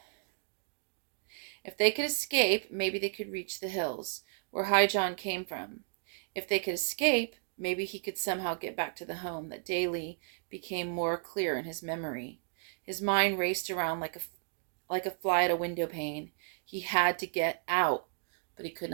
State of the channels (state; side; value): silent; left; digital silence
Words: If they could escape, maybe they could reach the hills, where High John came from. If they could escape, maybe he could somehow get back to the home that daily became more clear in his memory. His mind raced around like a fly at a window pane. He had to get out, but he could